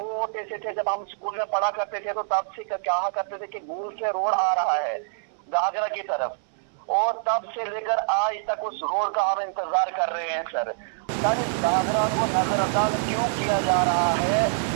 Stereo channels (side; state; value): left; silent; 61 dB below the other